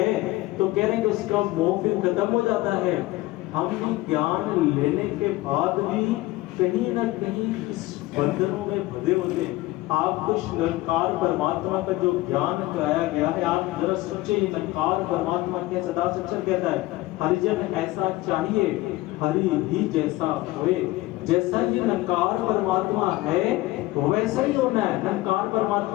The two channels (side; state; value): right; quieter; 18.6 dB